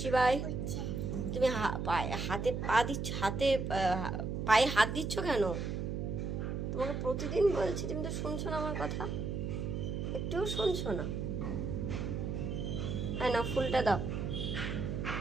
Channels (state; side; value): noise; right; hum, 2 dB below the sound